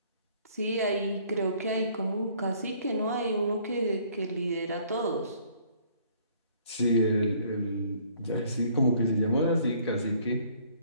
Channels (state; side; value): inverted; both; correlation -0.61